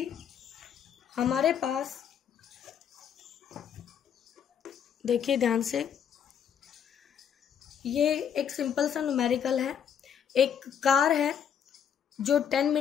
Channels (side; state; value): right; quieter; 8.3 dB